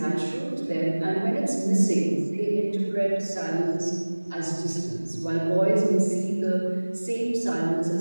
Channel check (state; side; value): inverted; both; correlation -1.00